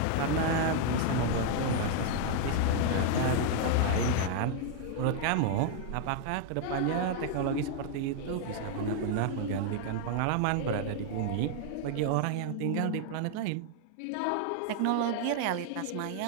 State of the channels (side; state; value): both; different; correlation 0.00